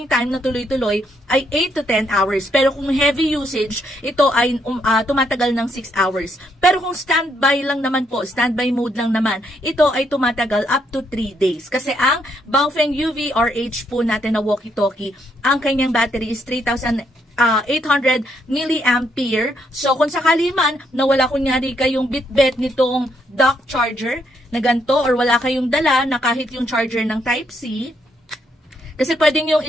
time na tuloy-tuloy ay 8 to 10 hours. Pero kung heavy usage, ito ay tumatagal ng 6 hours. Pero kung standby lang naman po, standby mode lang naman, ito ay tumatagal up to 3 days. Kasi ang Baofeng UV-RH po natin na walkie-talkie, ang kanyang battery is 3,800 milliampere. So, kung sakali man na wala kunyari kayong bitbit nitong dock charger na ganito or wala kayong dala na kahit yung charger ng Type-C, kasi pwedeng yung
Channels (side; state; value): both; normal; correlation 0.75